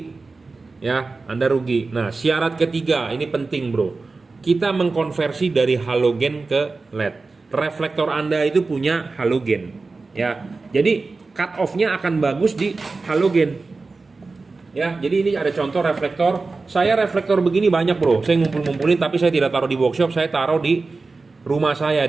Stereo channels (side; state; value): left; quieter; 3.9 dB